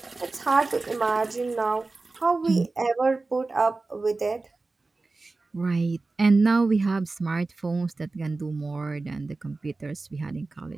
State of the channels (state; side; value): quieter; left; 3.5 dB